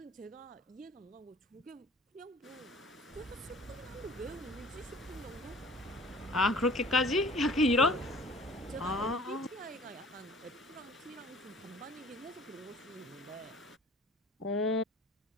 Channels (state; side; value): normal; both; correlation 0.48